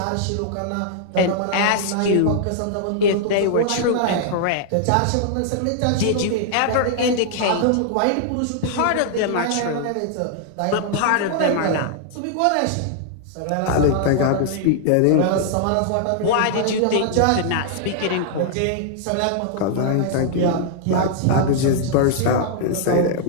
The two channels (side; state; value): both; different; correlation -0.01